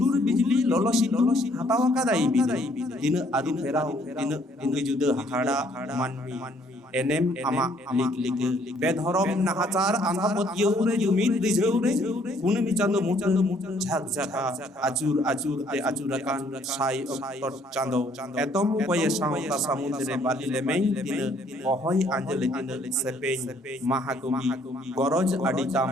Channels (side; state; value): both; normal; correlation 0.64